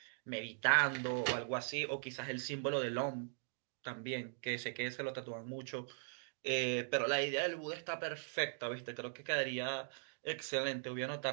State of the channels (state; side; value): silent; left; digital silence